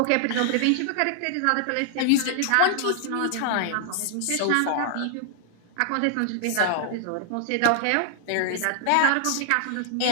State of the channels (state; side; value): different; both; correlation -0.01